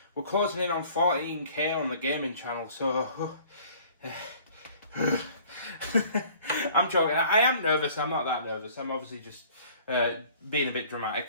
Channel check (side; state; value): both; inverted; correlation -0.52